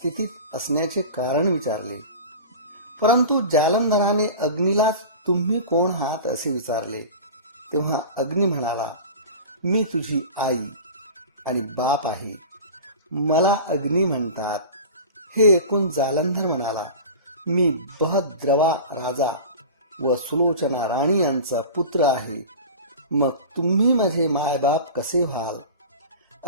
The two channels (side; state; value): both; inverted; correlation -0.34